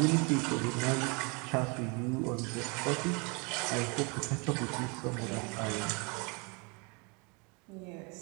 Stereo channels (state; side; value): quieter; left; 31.2 dB